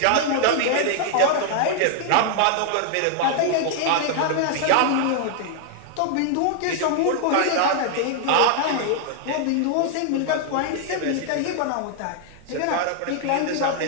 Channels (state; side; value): different; both; correlation 0.00